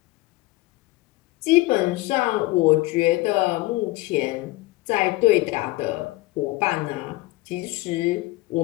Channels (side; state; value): right; quieter; 20.1 dB